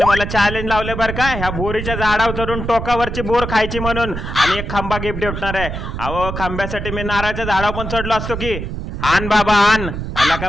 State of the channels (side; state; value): right; noise; rumble, 5 dB below the sound